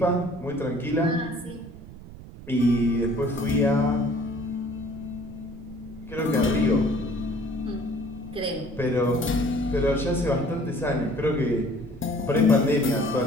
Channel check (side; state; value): right; noise; rumble, 16 dB below the sound